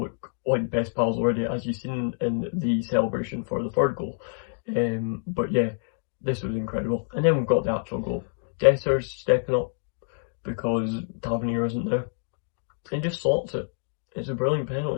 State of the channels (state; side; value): silent; right; digital silence